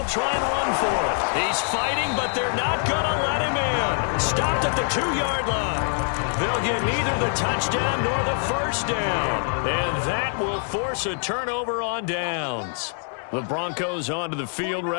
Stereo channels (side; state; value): right; silent; 56 dB below the other